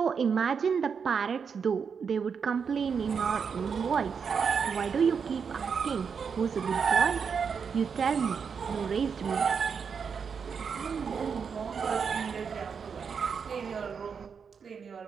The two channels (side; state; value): left; quieter; 6.3 dB